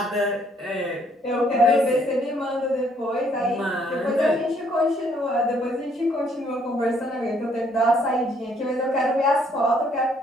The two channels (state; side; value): normal; both; correlation 0.66